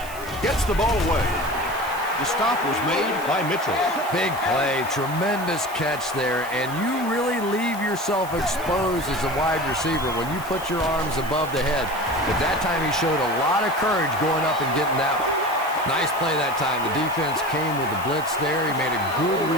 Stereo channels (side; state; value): right; noise; hiss, 16 dB below the sound